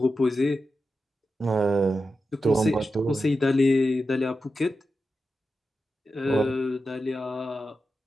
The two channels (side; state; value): both; normal; correlation 0.90